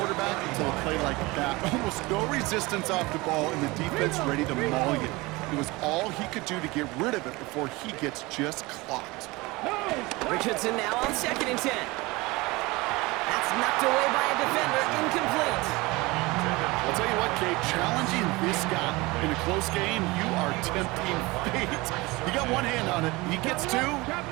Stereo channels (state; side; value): quieter; left; 22.7 dB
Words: until a play like that. Almost no resistance off the ball and the defense ready to maul you. It was all he could do to get rid of it before he gets just clocked. Richardson now on 2nd and 10. That's knocked away by a defender. Incomplete. I'll tell you what, Kate, challenging this guy in a close game, you are tempting fate. You got one hand on it. He gets 2,